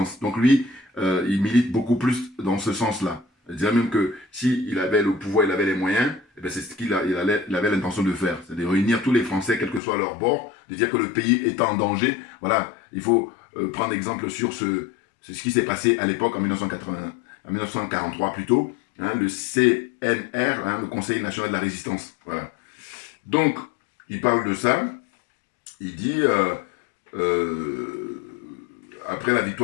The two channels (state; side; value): drops out; right; at 9.8 s